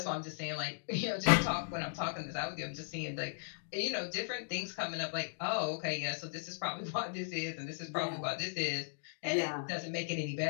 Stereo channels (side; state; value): right; silent; digital silence